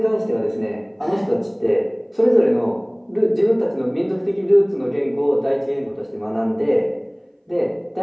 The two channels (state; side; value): identical; both; correlation 1.00